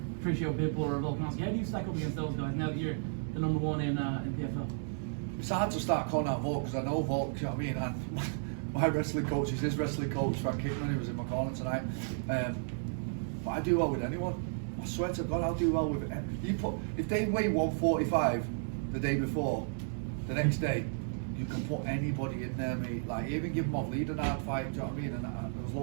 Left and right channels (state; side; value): silent; left; digital silence